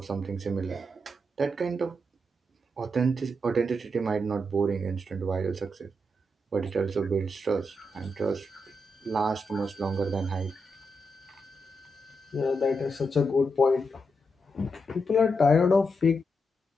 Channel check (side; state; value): both; normal; correlation 0.83